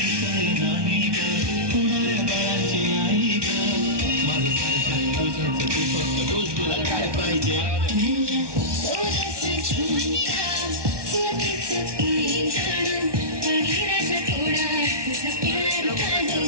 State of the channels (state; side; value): late; left; 1.2 ms